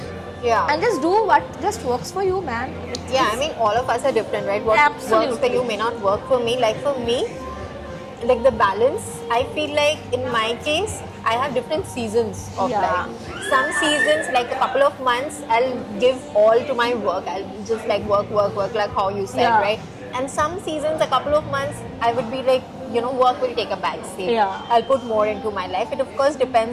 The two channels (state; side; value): identical; both; correlation 1.00